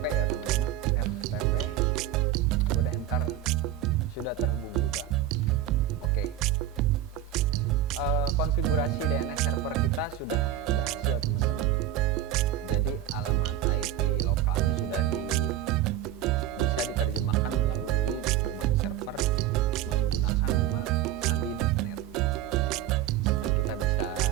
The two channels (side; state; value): left; quieter; 11.2 dB